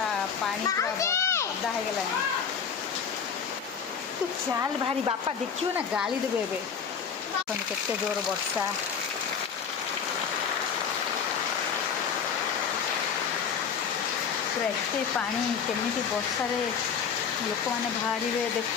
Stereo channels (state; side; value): quieter; right; 6.9 dB